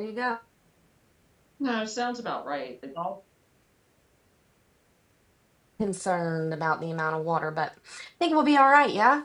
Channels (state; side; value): identical; both; correlation 1.00